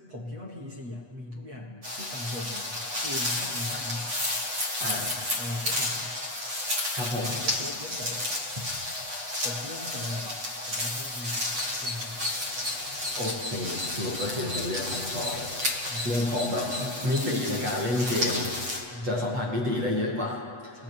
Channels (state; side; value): late; left; 8.2 ms